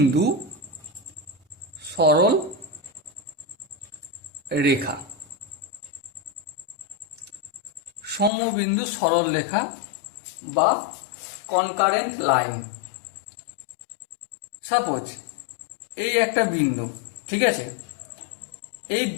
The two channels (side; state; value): right; drops out; at 8.3 s